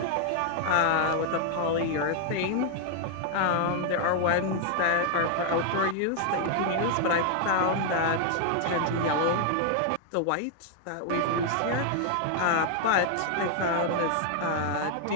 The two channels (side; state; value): both; different; correlation 0.00